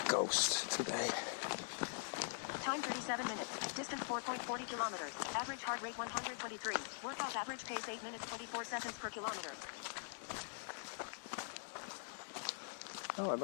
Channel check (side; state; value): right; silent; digital silence